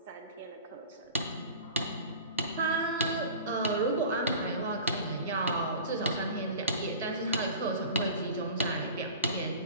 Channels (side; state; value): both; inverted; correlation -0.38